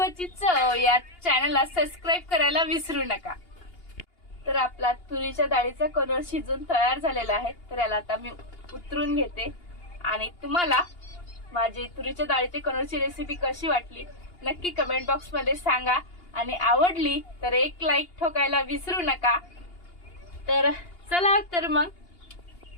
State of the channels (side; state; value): right; late; 2.8 ms